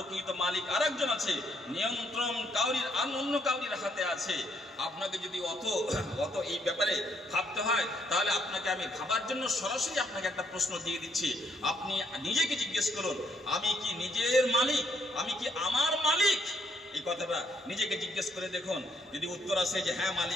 মালিক আরেকজন আছে। নিয়ন্ত্রণ কাউরির অন্য কাউরির হাতে আছে। আপনাকে যদি অত এই ব্যাপারে ভাবতে হয়, তাহলে আপনাকে আমি ভাবার জন্য সরাসরি আপনাকে একটা প্রশ্ন দিয়ে দিচ্ছি। আপনি নিজেকে জিজ্ঞেস করুন, আমি কি নিজের মালিক? আমি কি আমার মালিক? এই কথাটা নিজেকে জিজ্ঞেস করে দেখুন। যদি উত্তর আসে যে হ্যাঁ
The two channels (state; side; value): normal; both; correlation 0.72